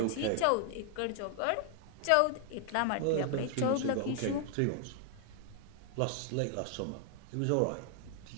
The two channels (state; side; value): different; both; correlation 0.00